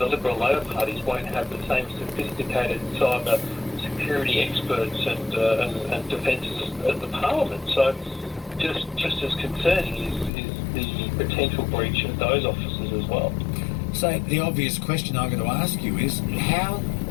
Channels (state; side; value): drops out; right; at 10.3 s